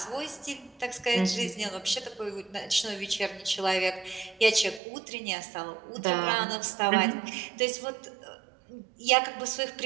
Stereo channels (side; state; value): left; drops out; at 4.8 s